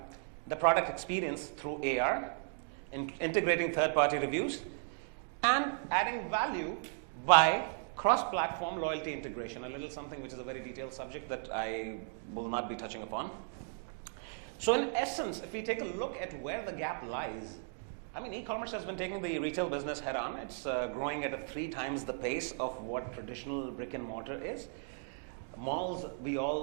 the product experience through AR, integrating third-party reviews, and adding value by cross-platform loyalty integration, a little something which is a very detailed subject that I will not be touching upon. So in essence, if we take a look at where the gap lies, I mean, e-commerce has been taking the retail business head on. It's growing at 3 times the pace of what traditional brick and mortar is. Malls, we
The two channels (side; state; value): left; silent; digital silence